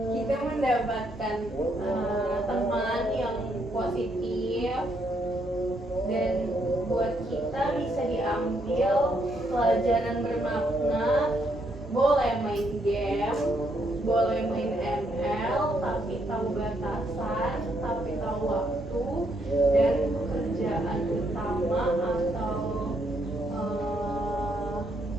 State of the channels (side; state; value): both; normal; correlation 0.74